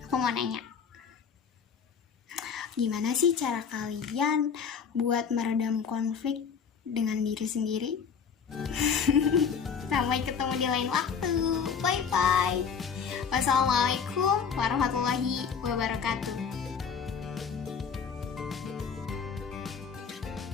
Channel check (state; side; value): quieter; right; 6.5 dB